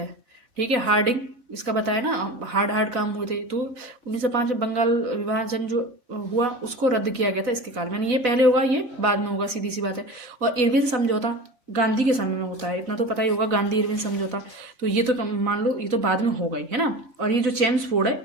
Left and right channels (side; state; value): left; late; 4.3 ms